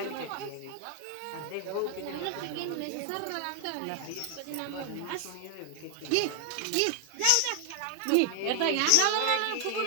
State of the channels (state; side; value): different; both; correlation 0.00